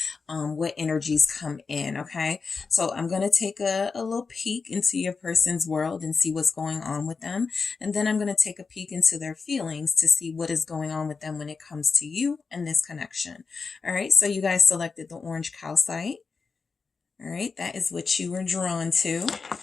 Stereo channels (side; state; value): right; quieter; 4.8 dB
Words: what energies come in. Okay. So I'm going to take a little peek into your person's world and see what's going on with them. And then I'm going to take a peek into their feelings to see what is going on with them when it comes to you and this connection. All right. So you guys selected the orange calcite. All right. That is what you were drawn to.